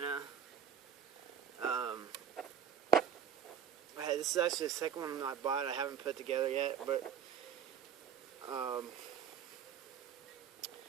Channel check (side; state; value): left; quieter; 8.4 dB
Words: This is actually the second one I bought. I haven't put together yet, but